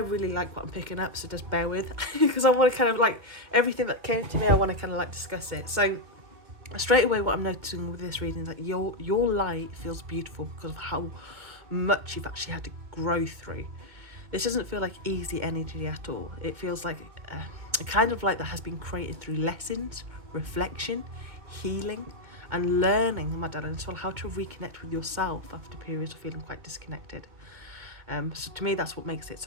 like what I'm picking up, so just bear with because I want to kind of like everything that came to me, I want to kind of like discuss it. So straight away what I'm noticing with this reading is that your light feels beautiful because of how much you've actually had to grow through. This doesn't feel like easy energy at all. It feels like a kind of light that has been created through lessons, reflection, healing and learning, my darling, as well, how to reconnect with yourself after periods of feeling quite disconnected. So to me that's what makes it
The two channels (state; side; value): late; left; 2.1 ms